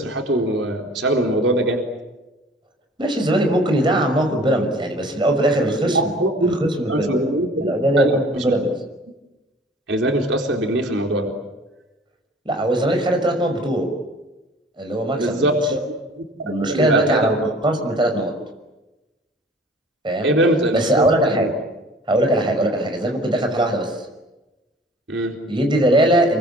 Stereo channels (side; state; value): both; normal; correlation 0.48